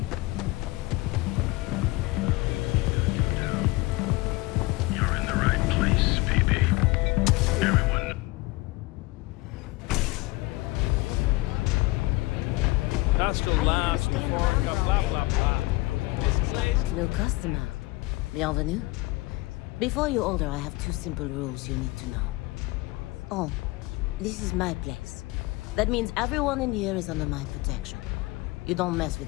You're in the right place, baby. Everyone. That's the last blah, blah, blah, blah. New customer. Bienvenue. Before you order, I have two simple rules you need to know. Oh, this is my place. That means everyone in here is under my protection. You don't mess with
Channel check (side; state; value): right; quieter; 21.8 dB